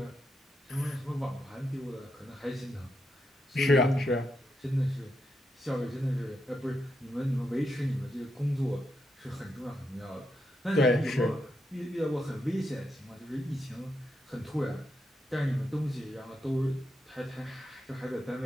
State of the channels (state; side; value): normal; both; correlation 0.83